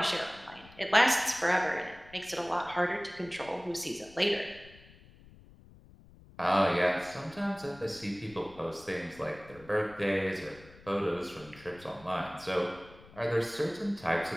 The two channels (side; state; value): left; noise; rumble, 22 dB below the sound